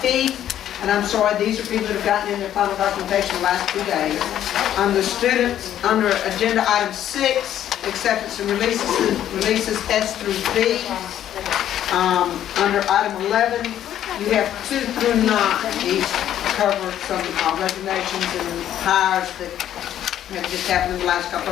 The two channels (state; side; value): quieter; right; 11.2 dB